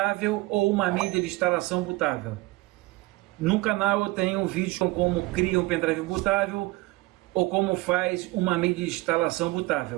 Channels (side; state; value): left; quieter; 21.6 dB